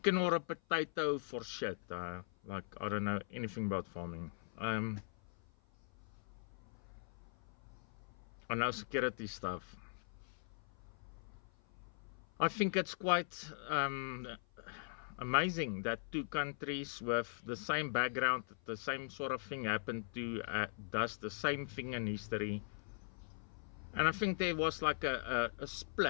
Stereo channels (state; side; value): silent; right; 51 dB below the other